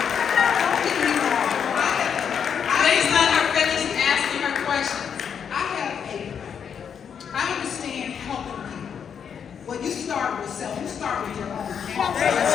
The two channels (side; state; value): right; quieter; 7.5 dB